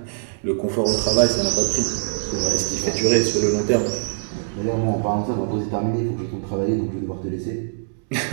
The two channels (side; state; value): left; silent; digital silence